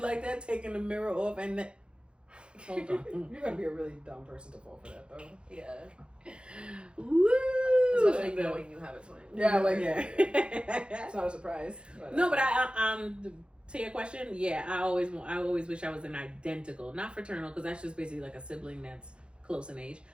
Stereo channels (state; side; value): late; left; 0.056 ms